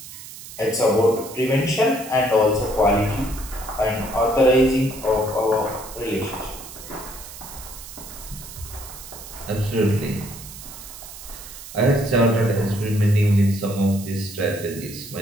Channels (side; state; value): right; noise; hiss, 14 dB below the sound